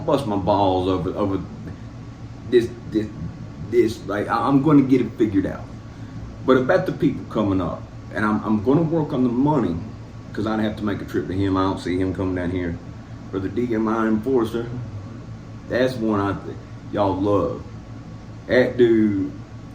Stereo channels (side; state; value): both; identical; correlation 1.00